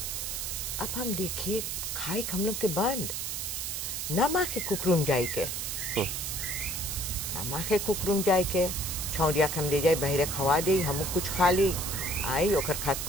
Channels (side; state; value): right; noise; hiss, 3 dB below the sound